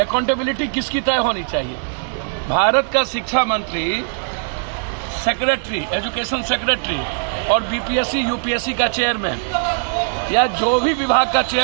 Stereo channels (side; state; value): left; silent; 66 dB below the other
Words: अकाउंटेबिलिटी किसकी तय होनी चाहिए? भारत का शिक्षा मंत्री, सेक्रेटरी, एजुकेशन सेक्रेटरी और बीपीएससी यूपीएससी का चेयरमैन या जो भी विभाग का